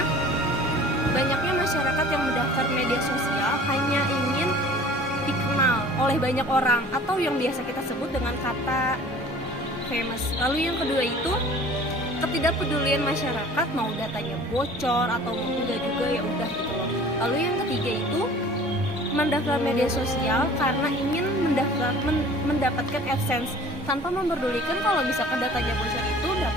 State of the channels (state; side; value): normal; both; correlation 0.47